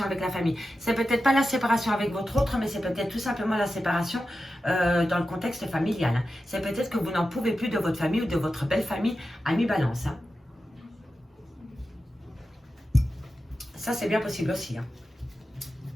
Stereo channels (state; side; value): normal; both; correlation 0.91